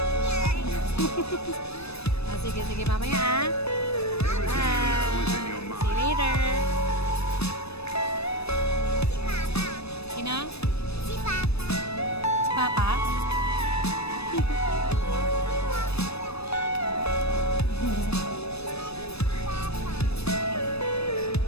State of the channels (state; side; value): late; right; 0.79 ms